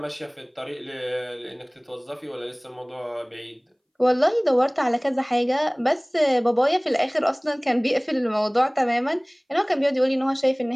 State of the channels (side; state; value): both; identical; correlation 1.00